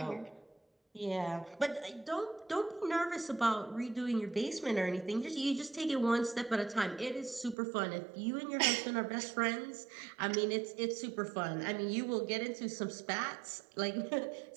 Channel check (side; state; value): left; drops out; at 7.6 s